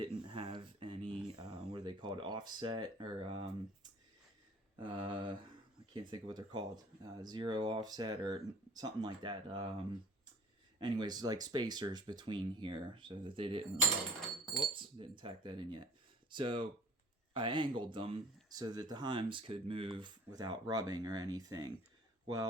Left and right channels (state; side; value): normal; both; correlation 0.50